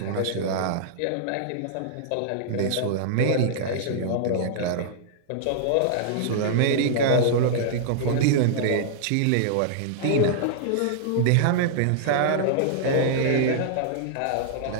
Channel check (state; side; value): different; both; correlation -0.01